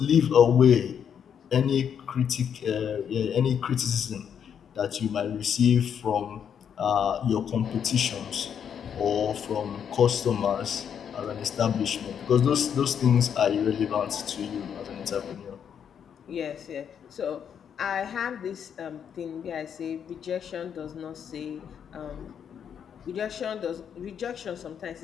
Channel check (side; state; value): right; quieter; 8.1 dB